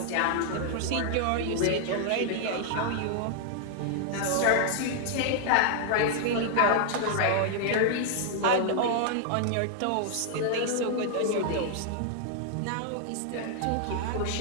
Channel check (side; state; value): both; different; correlation 0.00